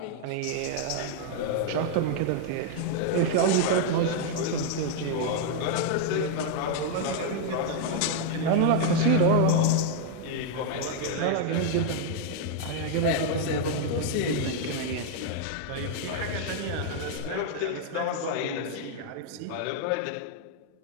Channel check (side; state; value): both; different; correlation 0.00